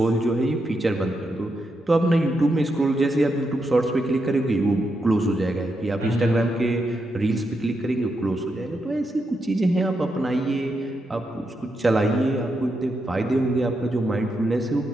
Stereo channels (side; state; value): both; normal; correlation 0.84